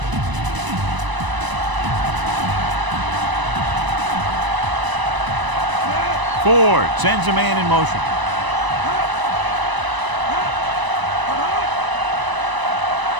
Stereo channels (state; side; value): late; left; 1.0 ms